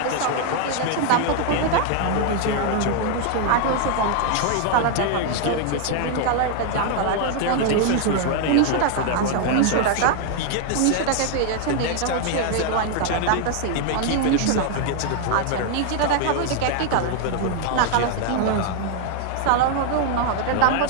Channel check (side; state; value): both; different; correlation 0.00